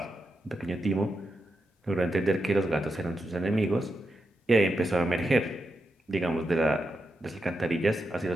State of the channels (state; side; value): normal; both; correlation 0.86